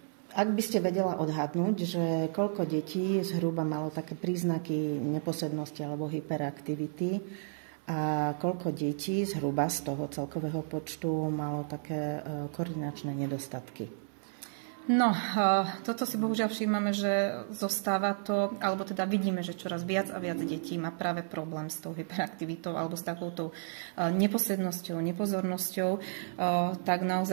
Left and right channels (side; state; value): left; silent; 56 dB below the other